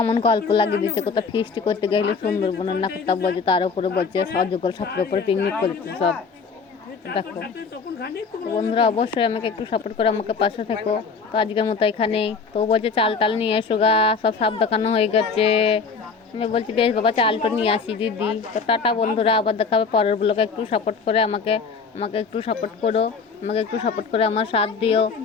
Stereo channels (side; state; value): right; quieter; 5.1 dB